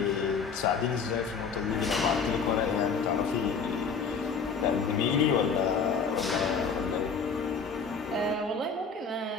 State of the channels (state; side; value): quieter; right; 5.4 dB